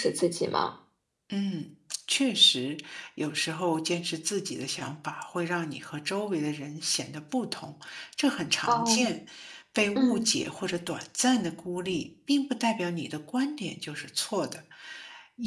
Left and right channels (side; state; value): both; identical; correlation 1.00